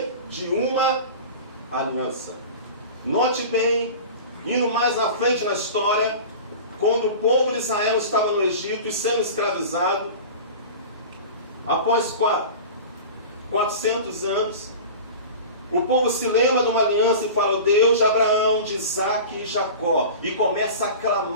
De uma aliança. Note bem, indo mais à frente na história, quando o povo de Israel estava no Egito e sendo escravizado, após 400 anos, o povo se lembra de uma aliança e fala, o Deus de Abraão, de Isaac e Jacó, e começa a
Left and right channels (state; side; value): inverted; both; correlation -0.34